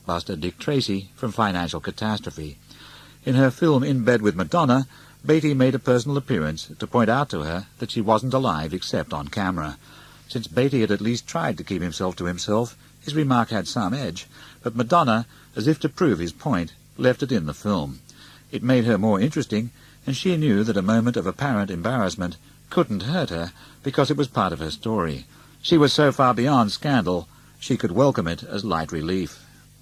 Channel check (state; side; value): identical; both; correlation 1.00